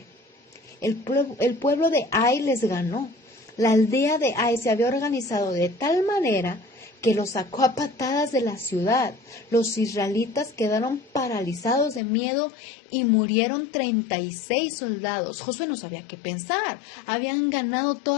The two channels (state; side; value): drops out; right; at 12.0 s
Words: El pueblo de Ai les ganó. La aldea de Ai se había organizado de tal manera que los sacó a patadas de la ciudad. Los israelitas quedaron paralizados de miedo y murieron 36 soldados. Josué no sabía qué pensar. Habían ganado